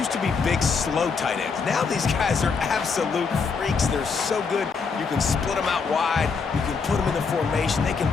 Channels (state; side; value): quieter; right; 5.2 dB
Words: to be big, slow tight ends. Now these guys are absolute freaks. They're so good. You can split them out wide. You can put them in the formation. They can